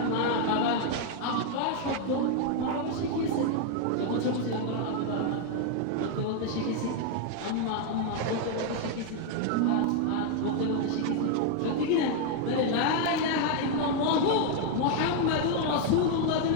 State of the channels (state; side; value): different; both; correlation 0.00